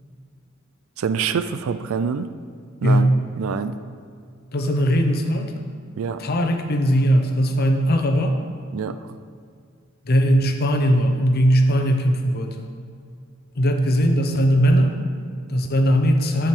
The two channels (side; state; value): both; normal; correlation 0.78